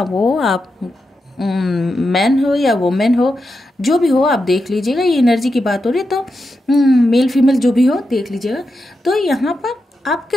वो आप मैन हो या वुमेन हो, जो भी हो आप देख लीजिएगा, ये एनर्जी की बात हो रही है तो मेल फीमेल जो भी हो देख लीजिएगा। तो यहाँ पर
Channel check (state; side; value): normal; both; correlation 0.87